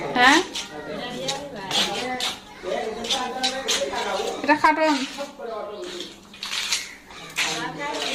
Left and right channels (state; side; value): identical; both; correlation 1.00